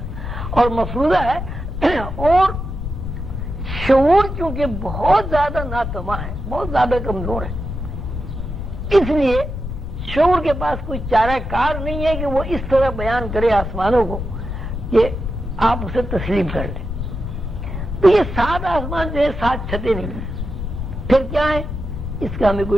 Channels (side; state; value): left; noise; rumble, 5 dB below the sound